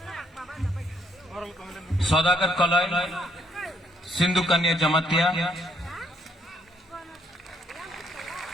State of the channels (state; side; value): normal; both; correlation 0.71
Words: Saudagar Kaloy, Sindhu Kanya Jamatia,